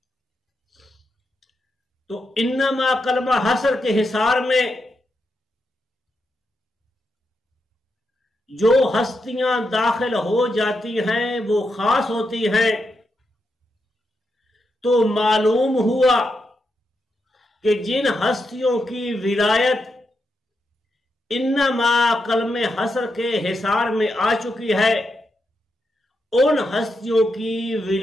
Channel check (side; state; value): both; normal; correlation 0.84